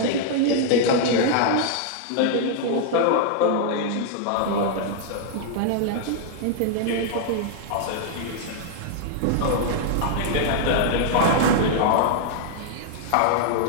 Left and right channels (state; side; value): different; both; correlation -0.01